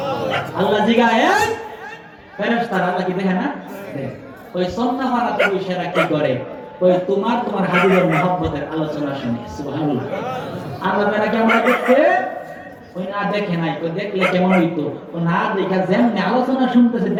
আল্লাহ জিগায়, ফেরেশতারা আল্লাহ কি দেখে না? ওই সন্নাহারাতে বসেরা কি করে? ওই তোমার হাবিবের মুহাব্বতের আলোচনা শুনে। সুবহানাল্লাহ। আল্লাহ তাআলা কি আমরা দেখতে? ওই না দেখে নাই, ওই দেখলে কেমন হইতো? ও না দেখা যেমনি আলোচনা শুনতেছে,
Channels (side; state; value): both; identical; correlation 1.00